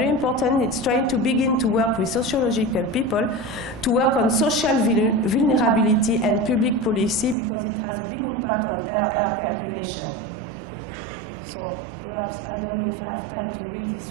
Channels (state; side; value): drops out; left; at 7.4 s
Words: important, it's trying to begin to work with sociological people to work on social vulnerability and public policy, because it has a big impact on air calculation. So perhaps, I don't know if I have time to read this